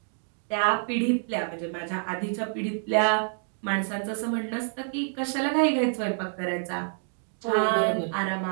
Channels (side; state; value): left; silent; 60 dB below the other